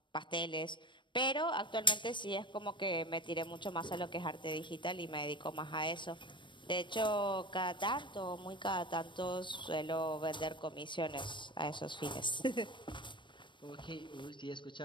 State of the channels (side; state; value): right; late; 0.23 ms